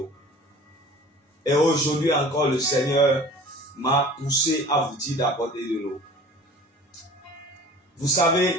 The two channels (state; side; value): normal; both; correlation 0.44